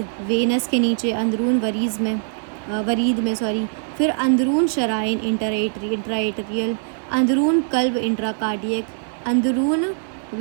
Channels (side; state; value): left; silent; digital silence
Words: وینس کے نیچے، اندرون ورید میں پھر اندرون شرائن، انٹرائیٹریل۔ اندرون قلب، انٹرا کارڈیک۔ اندرون